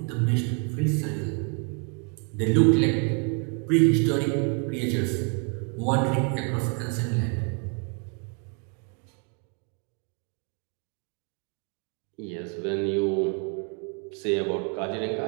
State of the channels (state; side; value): quieter; left; 38.4 dB